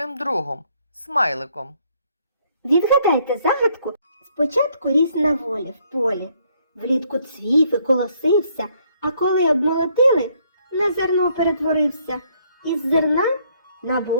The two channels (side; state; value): both; inverted; correlation -0.68